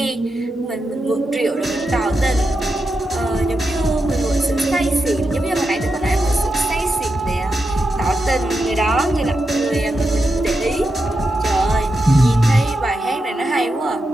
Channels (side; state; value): both; normal; correlation 0.87